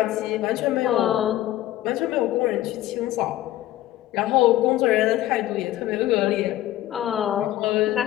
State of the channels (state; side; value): quieter; right; 14.4 dB